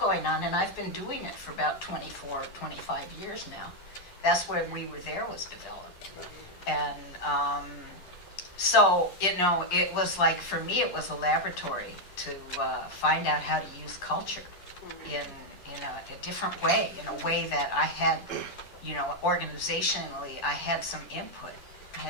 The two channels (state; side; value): late; right; 10 ms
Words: on, and I've been doing it for about 24, 25 years now. That's where We Were There was developed. And so, it was like, for me, it was a laboratory to find out how to use culture in a different way, in a way that I had, organizationally, I had some input. I